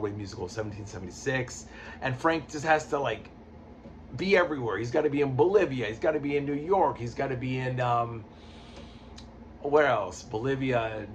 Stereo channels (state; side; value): identical; both; correlation 1.00